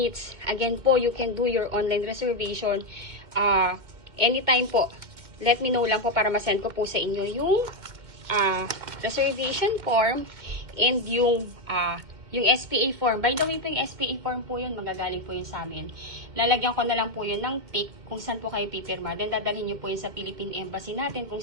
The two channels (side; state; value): left; late; 2.1 ms